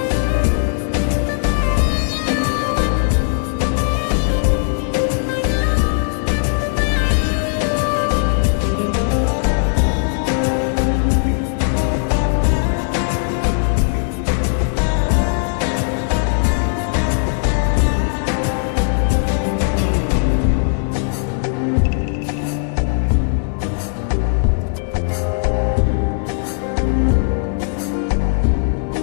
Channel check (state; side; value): silent; right; 63 dB below the other